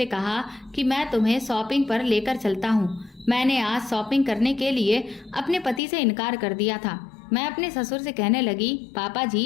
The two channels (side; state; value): right; drops out; at 5.8 s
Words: कहा कि मैं तुम्हें शॉपिंग पर लेकर चलता हूँ। मैंने आज शॉपिंग करने के लिए अपने पति से इनकार कर दिया था। मैं अपने ससुर से कहने लगी, पापा